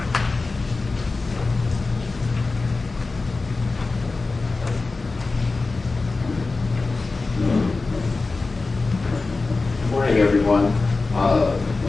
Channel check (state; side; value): quieter; right; 3.7 dB